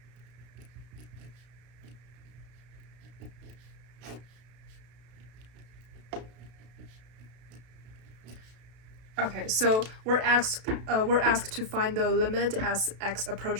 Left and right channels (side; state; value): left; late; 32 ms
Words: Okay, so we're asked to find the limit as x